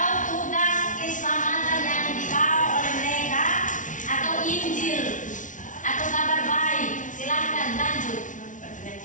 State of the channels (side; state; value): right; late; 0.37 ms